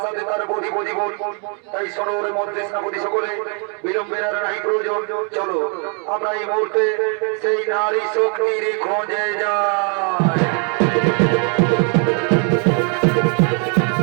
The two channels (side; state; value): left; quieter; 39.0 dB